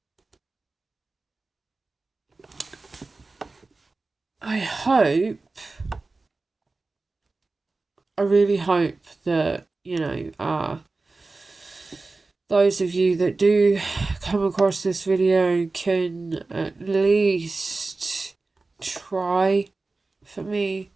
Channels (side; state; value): left; quieter; 3.6 dB